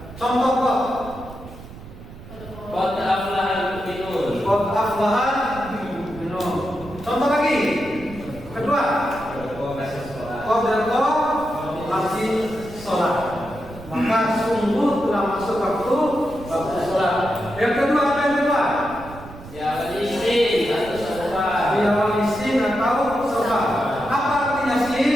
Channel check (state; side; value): noise; right; rumble, 16 dB below the sound